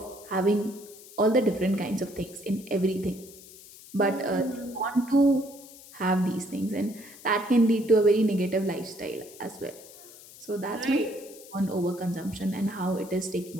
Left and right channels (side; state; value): left; noise; hiss, 19 dB below the sound